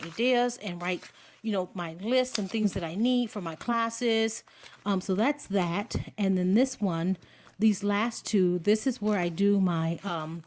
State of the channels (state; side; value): identical; both; correlation 1.00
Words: and write, my lists and things that I need for my classes. So that's that. And then this one, these last two, this is where I do my